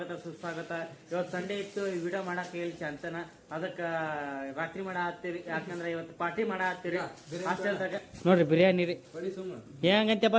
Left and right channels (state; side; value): identical; both; correlation 1.00